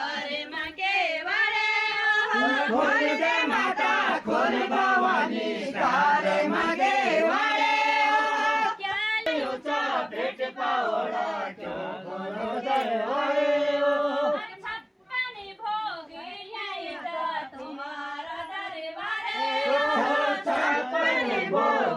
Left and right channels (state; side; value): identical; both; correlation 1.00